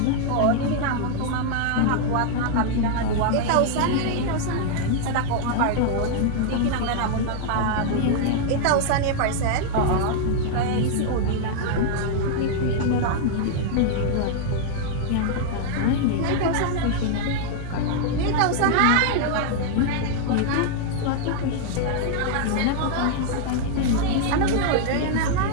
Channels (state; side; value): different; both; correlation -0.01